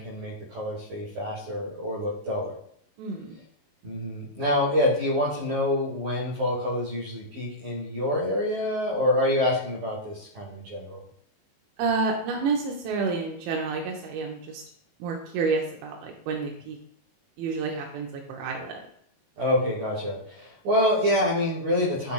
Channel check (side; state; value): left; late; 19 ms